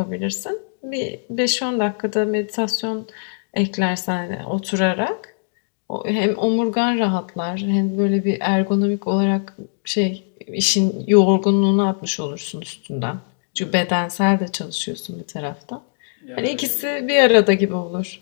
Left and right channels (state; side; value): silent; right; digital silence